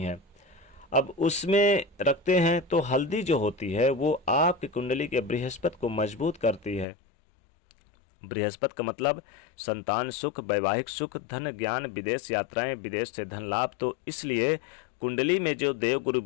है। अब उसमें रखते हैं तो हल्दी जो होती है वो आपकी कुंडली के बृहस्पति को मजबूत करती है। बृहस्पति का मतलब संतान सुख, वैवाहिक सुख, धन, ज्ञान, विदेश यात्राएं, विदेश से धन लाभ। तो इसलिए कुंडली में जो देवगुरु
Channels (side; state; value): right; drops out; at 6.9 s